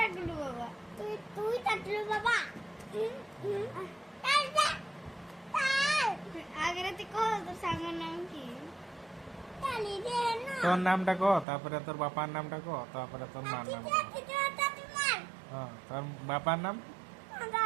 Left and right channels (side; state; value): left; drops out; at 11.5 s